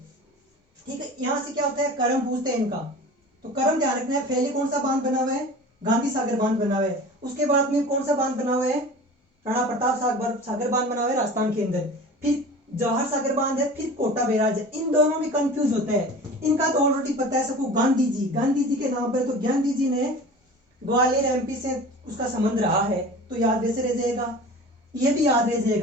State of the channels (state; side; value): normal; both; correlation 0.38